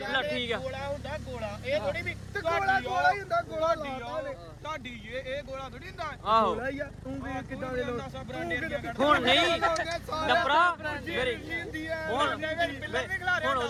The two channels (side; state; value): both; identical; correlation 1.00